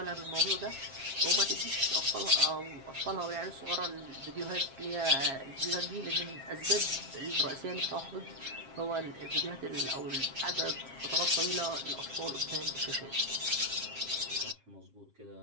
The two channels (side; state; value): left; late; 7.5 ms